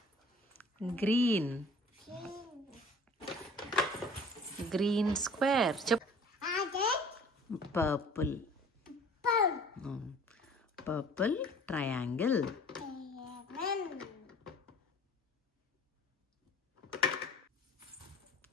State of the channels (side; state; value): both; normal; correlation 0.48